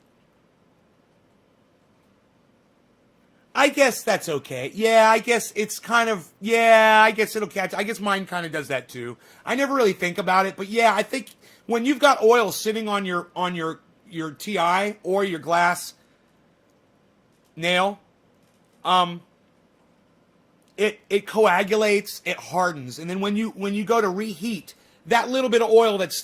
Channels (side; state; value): both; identical; correlation 1.00